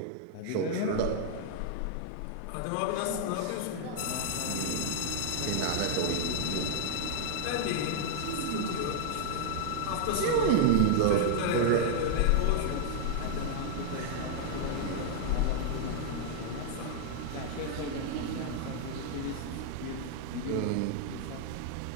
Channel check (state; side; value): different; both; correlation -0.01